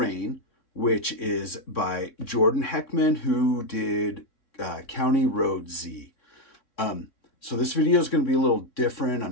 which is by Jordan Heckman, who did County Road Z. So this video is going to be a little different.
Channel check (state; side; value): late; right; 3.6 ms